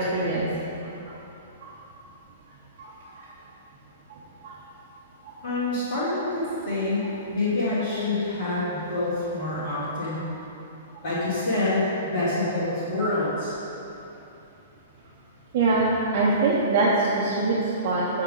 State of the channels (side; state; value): both; inverted; correlation -0.38